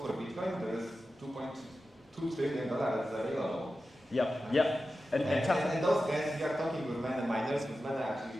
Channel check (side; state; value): both; normal; correlation 0.93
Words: for Bitcoin, there is $2.2 trillion that's available. Yep. And those guys, we are talking with many miners, with many